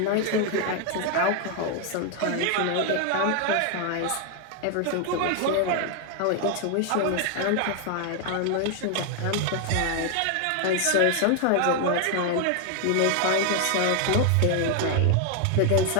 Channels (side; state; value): both; different; correlation 0.00